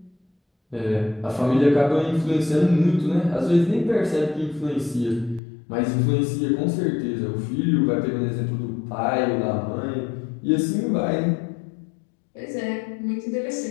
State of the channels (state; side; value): drops out; right; at 5.4 s